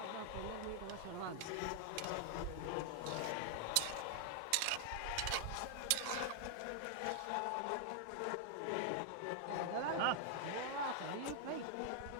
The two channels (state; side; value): different; both; correlation 0.00